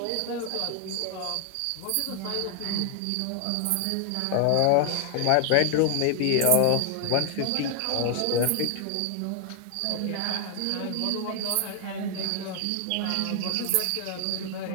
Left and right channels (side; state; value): both; different; correlation 0.00